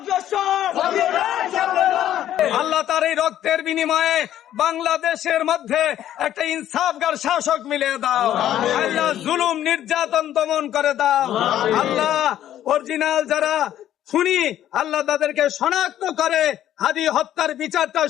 আল্লাহ তার এই রক্তের বিনিময়ে বাংলাদেশের মধ্যে একটা ইনসাফগার শাসক মিলিয়ে দাও। আল্লাহ জুলুম নির্যাতন দমন করে দাও। আল্লাহ অরিজিনাল যারা খুনি আল্লাহ তাদেরকে শনাক্ত করে হাদি হত্যার বিচারটা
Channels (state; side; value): quieter; right; 11.8 dB